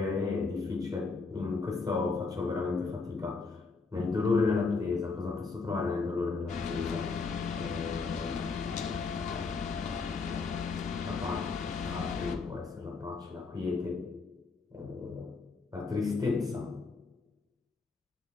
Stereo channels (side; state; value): right; quieter; 4.3 dB